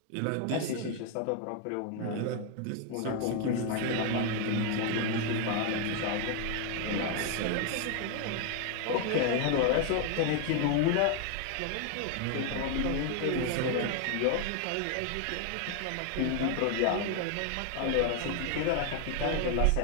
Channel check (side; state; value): both; different; correlation 0.00